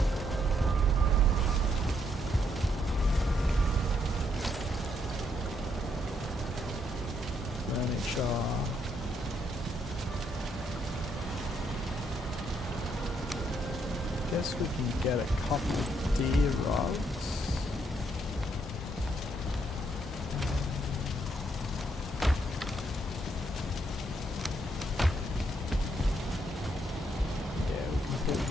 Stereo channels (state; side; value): normal; both; correlation 0.74